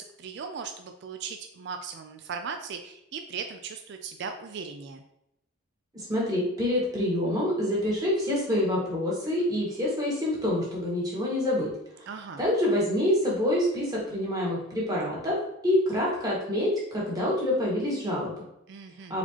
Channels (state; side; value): normal; both; correlation 0.36